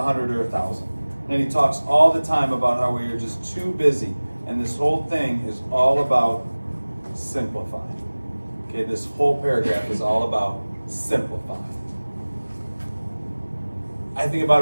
or 1,000. And he talks all the time about how we are just too busy. And this whole thing is all about simplifying. Okay, this whole paragraph is all about simplifying. I think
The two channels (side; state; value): both; inverted; correlation -1.00